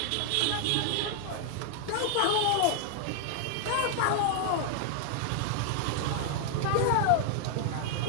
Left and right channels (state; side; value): different; both; correlation 0.00